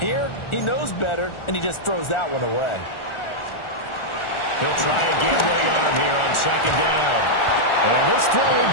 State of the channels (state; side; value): late; right; 1.4 ms